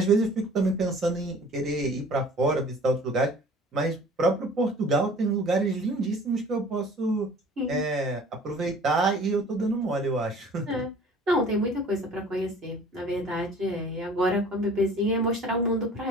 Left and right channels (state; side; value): normal; both; correlation 0.48